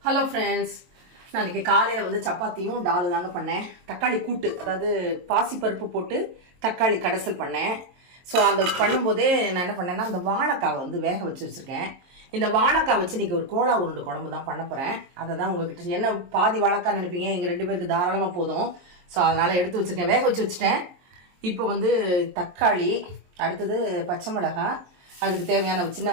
Hello friends, நான் இன்றைக்கி காலையில் வந்து சப்பாத்தியும் டாலு தாங்க பண்ணேன். தக்காளி கூட்டு, அதாவது பாசிப்பருப்பு போட்டு தக்காளி கடைசல் பண்ணேன். ஸோ அந்த பண்ணும்போதே நான் என்ன பண்ணேன்னா, அந்த வாழைக்காவை வந்து வேக வச்சுருக்கேன். இந்த வாழைக்காய் வச்சு இன்றைக்கி ஒரு கோலா உருண்டை குழம்பு தான் பண்ண போகிறேன். அதை தான் உங்கள்கிட்ட என்ன பாதி வாழைக்காய் நினைப்பீங்க, எங்கள் 2 பேருக்கு தாராளமாக போதும். ஸோ அதனால் எடுத்து வச்சுருக்கேன், வேக வச்சுட்டேன். இப்போ வந்து தக்காளி, அடுத்தது பச்சை மிளகாய், அதுக்கு தேவையான சின்ன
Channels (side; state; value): left; late; 22 ms